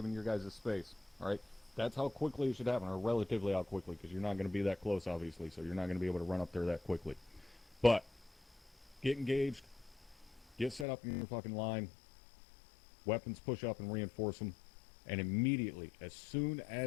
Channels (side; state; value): right; drops out; at 10.9 s